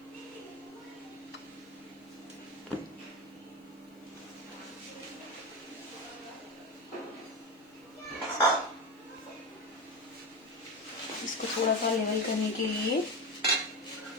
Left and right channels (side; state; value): both; normal; correlation 0.19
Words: इसको थोड़ा सा लेवल करने के लिए